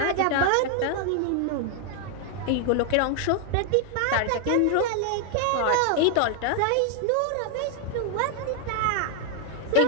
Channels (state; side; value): different; both; correlation 0.00